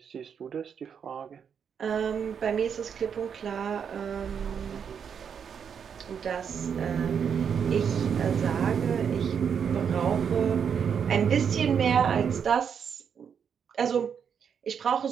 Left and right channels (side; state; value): left; quieter; 7.3 dB